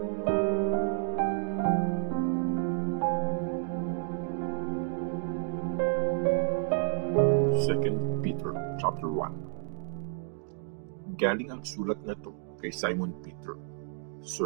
Peter chapter 1. Galing ang sulat na to kay Simon Peter,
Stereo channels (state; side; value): silent; left; digital silence